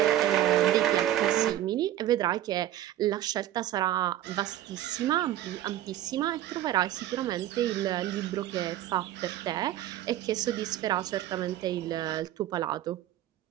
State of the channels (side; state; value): left; quieter; 12.9 dB